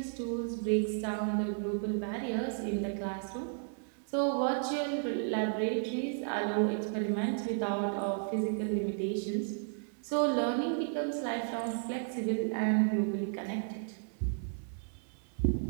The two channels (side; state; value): left; silent; digital silence